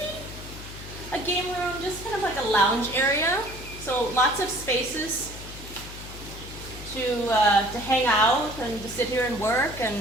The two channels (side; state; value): left; noise; hum, 13 dB below the sound